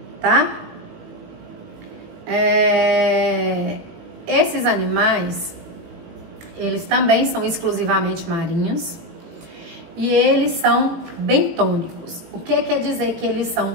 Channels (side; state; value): left; late; 18 ms